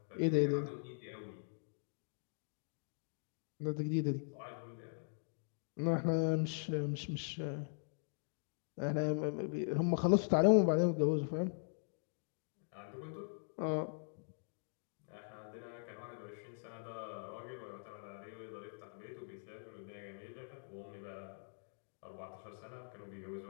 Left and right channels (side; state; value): right; silent; digital silence